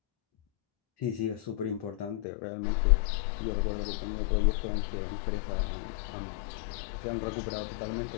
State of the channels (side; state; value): right; drops out; at 2.2 s